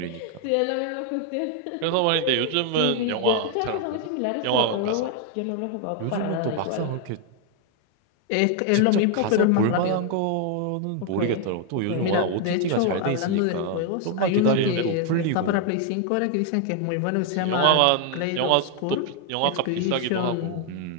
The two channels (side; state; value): both; different; correlation 0.00